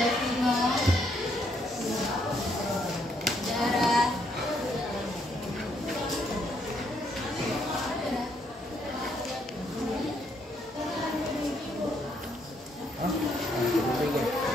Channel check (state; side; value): normal; both; correlation 0.72